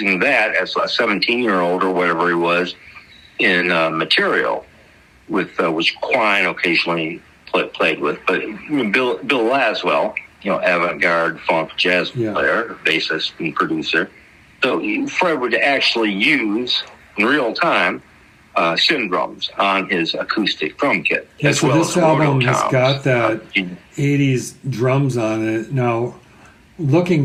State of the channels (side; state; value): both; identical; correlation 1.00